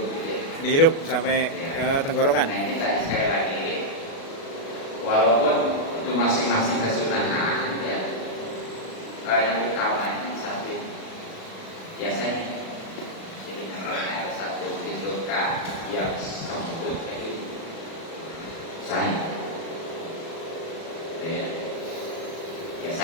gitu ya. Dihirup sampai ke tenggorokan. Nah ini tadi sekali lagi, walaupun itu masing-masing kesunahan ya. Yang utama biasanya. Jadi ada satu pintu kah yang kemudian itu saya. Ya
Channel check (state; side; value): late; right; 36 ms